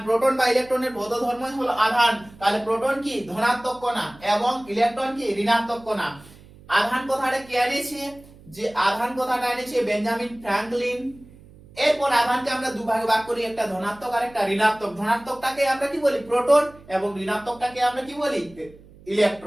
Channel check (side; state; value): right; noise; hum, 23 dB below the sound